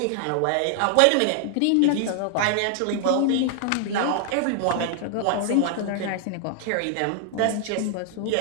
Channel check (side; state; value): both; different; correlation 0.00